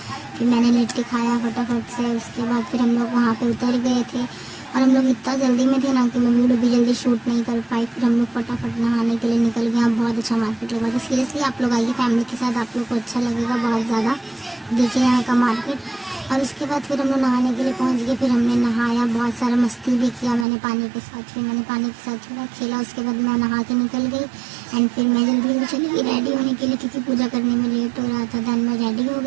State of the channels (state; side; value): drops out; left; at 20.5 s